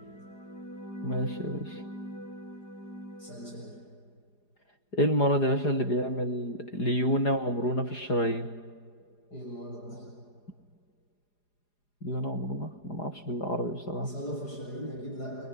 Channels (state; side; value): late; right; 4.9 ms